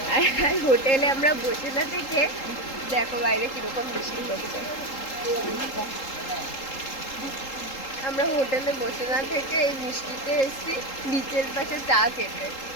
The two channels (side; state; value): right; late; 3.8 ms